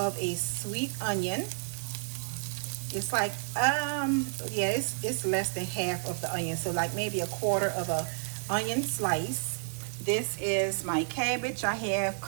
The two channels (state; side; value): silent; left; 57 dB below the other